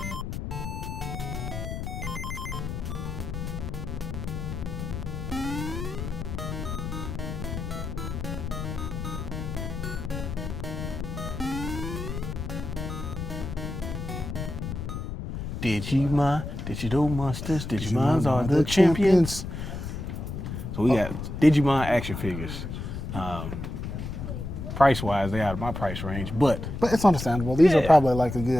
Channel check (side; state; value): left; noise; rumble, 6 dB below the sound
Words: Digimon, Digital Monsters, Digimons are the champions. So we got Digimon action figures. Price-wise, they're out of my price range, but But it's understandable. These are Yeah. probably like a